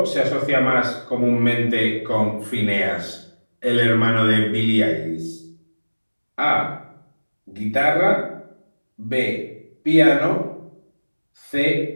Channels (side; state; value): both; inverted; correlation -1.00